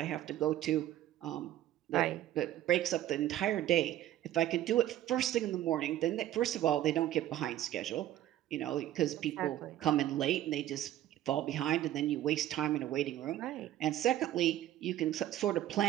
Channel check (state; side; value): quieter; left; 13.1 dB